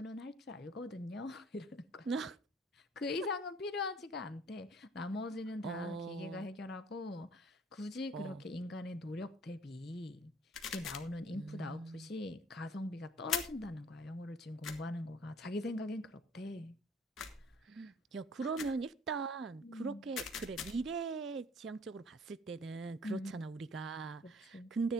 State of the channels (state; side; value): normal; both; correlation 0.54